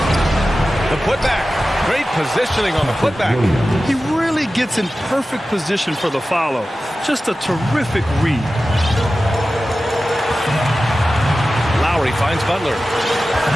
The putback. Great positioning on the putback. He really gets in perfect position for the follow. Just a terrific read. Lowry finds Butler.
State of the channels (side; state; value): both; normal; correlation 0.95